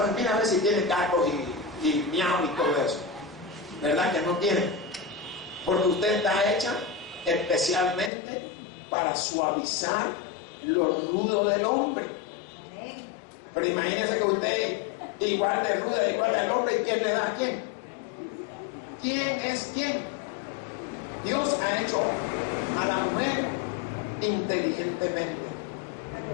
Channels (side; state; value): right; drops out; at 8.1 s